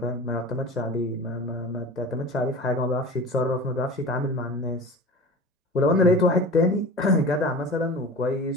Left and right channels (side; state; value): both; normal; correlation 0.36